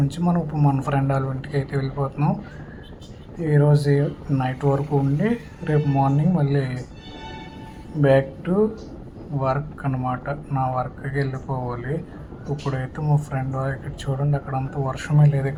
నుంచి మనం ఇప్పుడు మన ఫ్రెండ్ వాళ్ళ ఇంటికి అయితే వెళ్ళిపోతున్నాం. ఈరోజు నైట్ వరకు ఉండి రేపు మార్నింగ్ మళ్ళీ బ్యాక్ టు వర్క్ అన్నమాట. నా వర్క్కి వెళ్ళిపోవాలి. ఇప్పుడైతే మా ఫ్రెండ్ ఇక్కడ చూడండి, అక్కడ అంత వర్షమే లేదు,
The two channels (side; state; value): both; identical; correlation 1.00